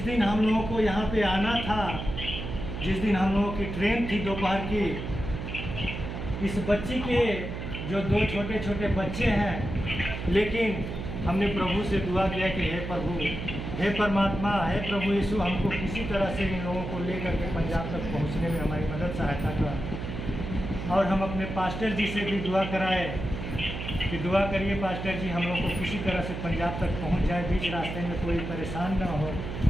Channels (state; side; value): noise; right; hum, 6 dB below the sound